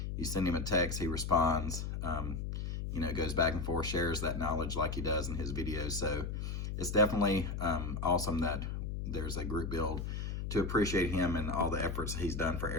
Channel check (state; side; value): noise; left; hum, 4 dB below the sound